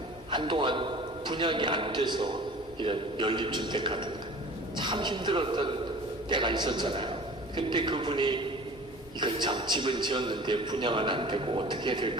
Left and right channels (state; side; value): normal; both; correlation 0.43